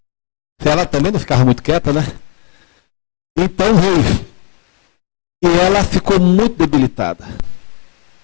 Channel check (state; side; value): quieter; right; 36.5 dB